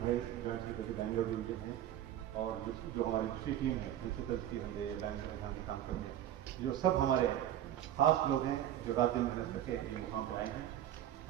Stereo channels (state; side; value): quieter; left; 11.8 dB